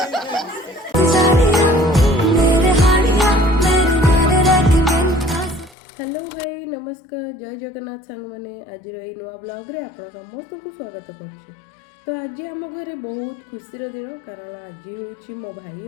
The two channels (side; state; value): right; drops out; at 5.8 s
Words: हेलो हाय नमस्कार जय जगन्नाथ सांग मैंने आज नुआ ब्लॉग रे आप समस्त को स्वागत कर तो आज आम घर बहुत खुशी दिन कारण आज हूँ मो भाई